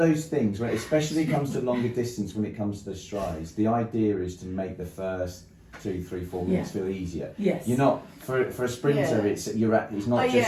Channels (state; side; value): identical; both; correlation 1.00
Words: things, when especially comes to longer distance, when it comes to the strides, the idea is to make the first 2, 3, 4 minutes feel easier. Yes. You're not for a sprinter. Yeah. It's not Oh, just